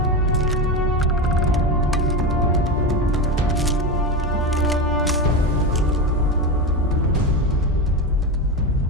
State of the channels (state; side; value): normal; both; correlation 0.18